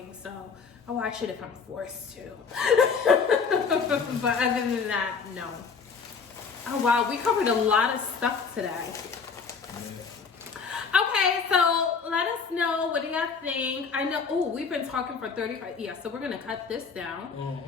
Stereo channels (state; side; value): quieter; right; 5.5 dB